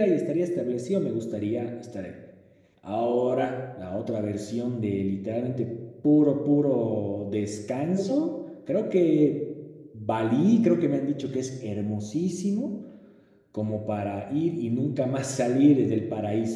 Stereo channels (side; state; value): both; identical; correlation 1.00